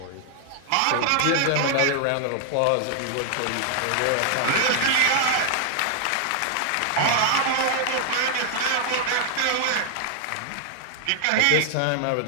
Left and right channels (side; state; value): both; different; correlation 0.00